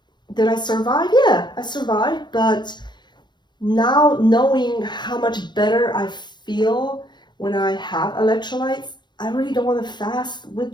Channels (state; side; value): late; right; 0.21 ms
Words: did I survive? Yeah, I survived. But now knowing how much better I feel when I have electrolytes, I really don't want to fast